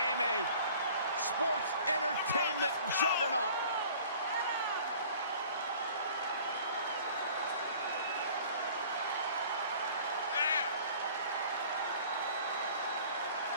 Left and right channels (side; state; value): both; inverted; correlation -0.48